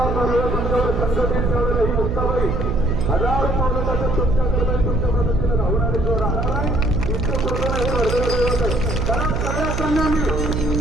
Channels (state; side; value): noise; right; hum, 2 dB below the sound